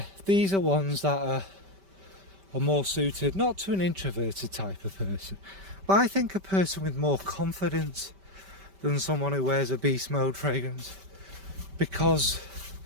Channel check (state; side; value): late; left; 5.1 ms